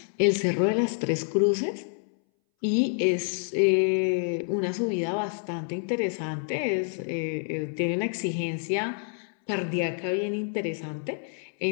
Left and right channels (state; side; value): silent; right; 60 dB below the other